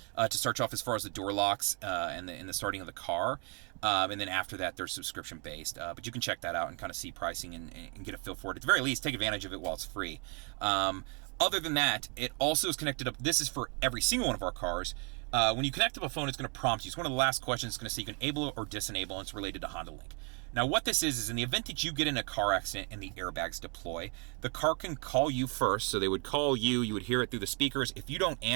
to start you off as far as the door locks and the starting of the car. And then after that, they're subscription based. But you can check that out and kind of see pricing and get a feel for it. At the very least, take advantage of it while it's free. Other than that, it also is connected up. This is for every single one of our cars. When you connect up a phone, it's going to prompt you. It's one of the last questions. It's going to say you can enable or disable, and it's related to Honda Link. Now, what this is in the event that you get in a car accident and the airbags deploy, the car can call you first. So they would call you. You would hear it through the speakers. If you don't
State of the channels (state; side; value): quieter; left; 36.2 dB